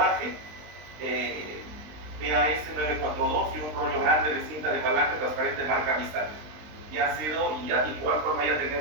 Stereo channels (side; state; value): left; late; 20 ms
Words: PAS 942 y un rollo grande de cinta de palanca transparente marca Misal. Ya ha sido, y de igual forma ya